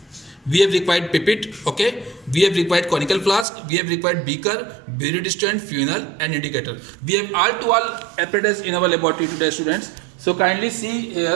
we have required pipette. Okay, we have required conical flask, we have required beaker, burette stand, funnel and indicator. We have all apparatus in our laboratory today, students. So kindly see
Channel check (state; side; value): drops out; left; at 3.5 s